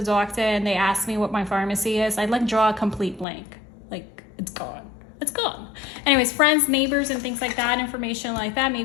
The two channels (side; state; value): right; drops out; at 3.2 s